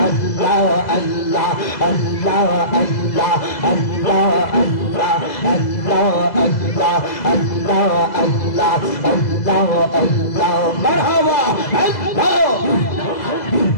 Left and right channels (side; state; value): right; late; 2.0 ms